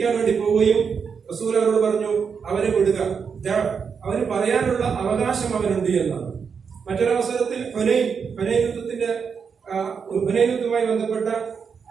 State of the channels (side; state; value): left; quieter; 6.2 dB